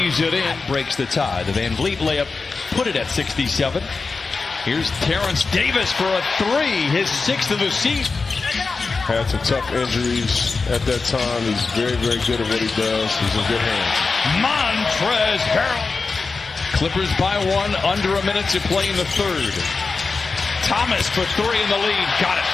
it in, breaks the tie. The Van Vliet layup put it at 67. Here's Terrence Davis for a 3, his 6th of the season. Had some tough injuries at that time. He's very, very good at what he does. He's in good hands. Montrezl Harrell. Clippers by 1, under a minute to play in the 3rd. Thomas for 3 in the lead. Got it.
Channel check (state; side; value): quieter; right; 4.3 dB